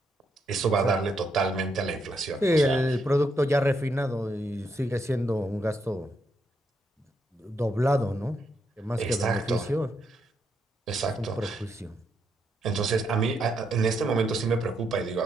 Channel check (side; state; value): both; normal; correlation 0.78